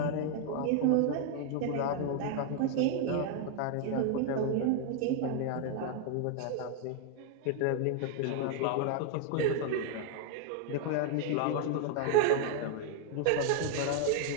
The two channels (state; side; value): different; both; correlation 0.00